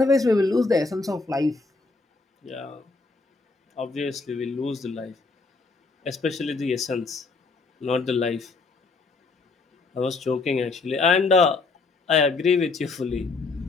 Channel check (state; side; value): quieter; right; 3.9 dB